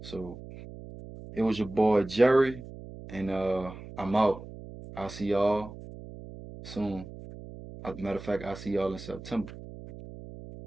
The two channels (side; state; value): right; noise; hum, 14 dB below the sound